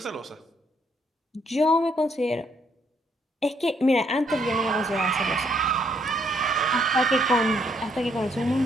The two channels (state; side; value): normal; both; correlation 0.70